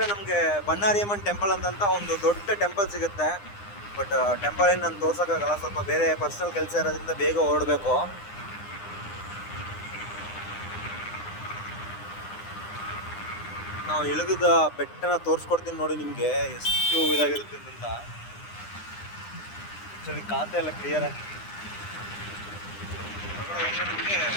ನಮಗೆ ಬನ್ನಾರಿಯಮ್ಮನ್ ಟೆಂಪಲ್ ಅಂತ ಒಂದು ದೊಡ್ಡ ಟೆಂಪಲ್ ಸಿಗುತ್ತೆ. ಬಟ್ ಟೆಂಪಲ್ ಏನು ನಾನು ತೋರ್ಸೋಕ್ಕಾಗಲ್ಲ, ಸ್ವಲ್ಪ ಬೇರೆ ಪರ್ಸನಲ್ ಕೆಲಸ ಇರೋದ್ರಿಂದ ಬೇಗ ಹೊರಡಬೇಕು. ನಾವು ಇಳಿದ ಬೆಟ್ಟನ ತೋರಿಸ್ಕೊಡ್ತೀನಿ ನೋಡಿ ನಿಮಗೆ, ಎಷ್ಟು ಇದಾಗಿರುತ್ತೆ ಅಂತ. ಆ್ಯಕ್ಚುಲಿ ಖಾತೆ ಎಲ್ಲ ಕ್ಲಿಯರ್ ಆಗಿ ನಿಮಗೆ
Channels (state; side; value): late; right; 9.8 ms